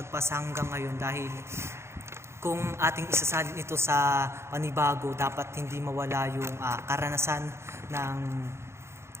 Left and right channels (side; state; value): left; late; 0.13 ms